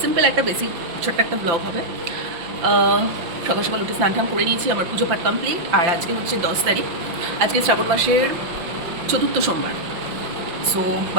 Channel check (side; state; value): left; late; 5.8 ms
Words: সিম্পল একটা বেসিক ছোট্ট একটা ব্লগ হবে। সকাল সকাল উঠে স্নান টান করে নিয়েছি, আমার পুজো পাঠ কমপ্লিট। আর আজকে হচ্ছে 10 তারিখ, আজকে শ্রাবণ মাসের চতুর্থ সোমবার। সো